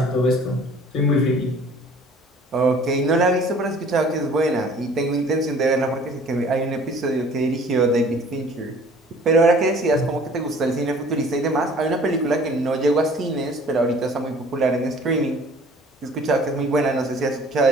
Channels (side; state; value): both; normal; correlation 0.51